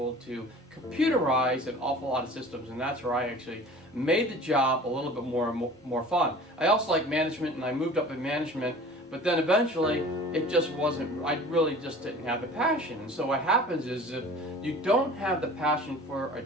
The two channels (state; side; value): normal; both; correlation 0.43